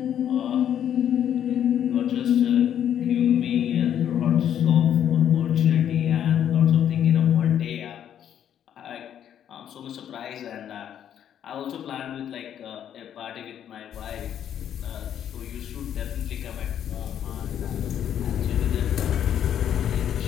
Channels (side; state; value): right; quieter; 9.8 dB